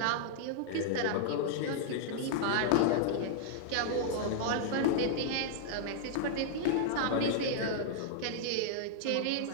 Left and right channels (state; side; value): different; both; correlation -0.01